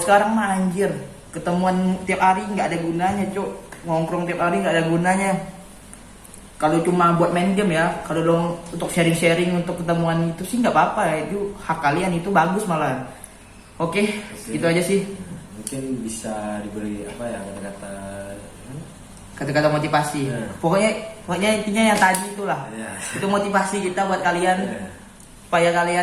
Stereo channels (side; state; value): both; identical; correlation 1.00